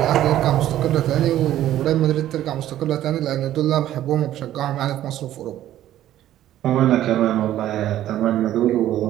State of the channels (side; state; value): left; quieter; 12.8 dB